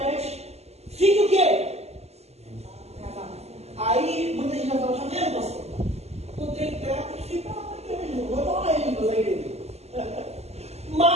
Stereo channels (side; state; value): left; late; 0.30 ms